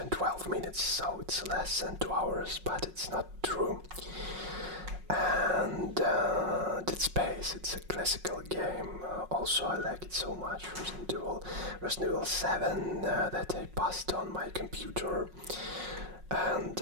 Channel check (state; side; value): late; left; 5.5 ms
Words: minutes, so it's less than 2 hours, but it's not true. And the Dead Space. It's a classical game. Also, I like it so much. Resident Evil 7 that I passed on my computer.